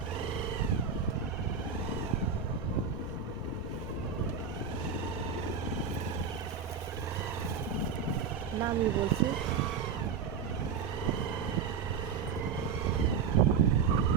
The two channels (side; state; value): left; quieter; 6.2 dB